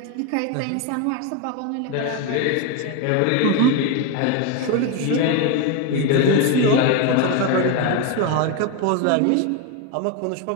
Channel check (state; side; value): different; both; correlation 0.03